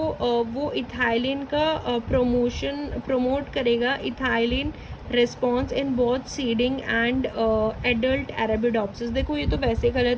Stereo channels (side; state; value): both; identical; correlation 1.00